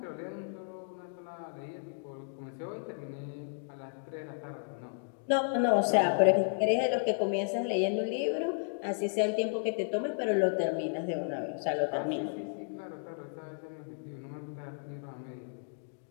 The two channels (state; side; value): silent; right; digital silence